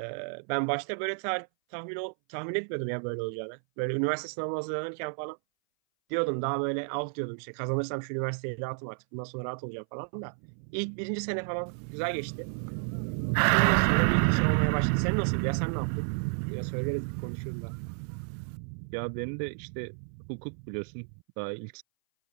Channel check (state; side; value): silent; left; 57 dB below the other